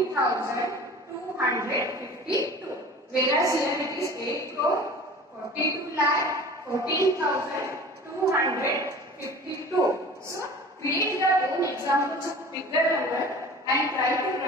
Whereas here it is 8 crore 42,14,252. So create your own examples of bigger number and try to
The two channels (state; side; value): normal; both; correlation 0.40